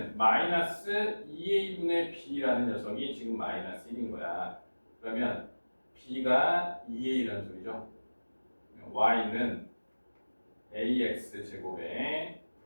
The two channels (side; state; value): both; inverted; correlation -1.00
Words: 마이너스 2a분의 b라는 녀석이 지금 마이너스 1인 거야. 그러면 b가 2a라는 소리죠. y는 ax 제곱에